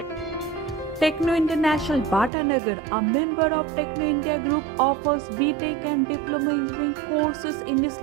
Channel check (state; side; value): drops out; left; at 2.3 s